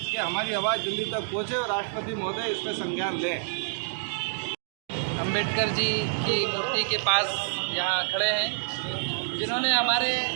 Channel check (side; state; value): left; silent; digital silence